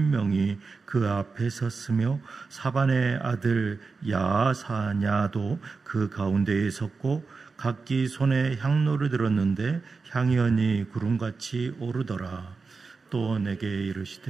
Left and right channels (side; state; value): left; quieter; 4.5 dB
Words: 그 앞에 섰으며 사반의 아들 야사냐도 그 가운데에 섰고 각기 손에 향로를 들었는데 향이 연이 구름같이 오르더라. 또 내게